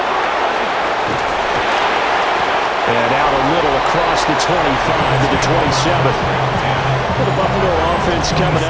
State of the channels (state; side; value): identical; both; correlation 1.00